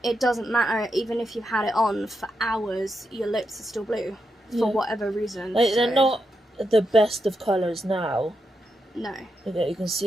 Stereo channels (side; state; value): both; normal; correlation 0.85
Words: it doesn't matter, even if you've had it on for hours, your lips are still blue, for whatever reason. Like, they're not the best of colours now. No. You can